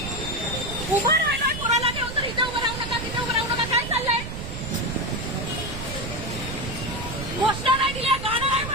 उभं राहिलाय कोणाला घेऊन तर इथे उभं राहू नका, तिथे उभं राहू नका. काय चाललंय? घोषणा नाही दिल्या, गाणं नाही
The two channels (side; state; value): right; noise; rumble, 8 dB below the sound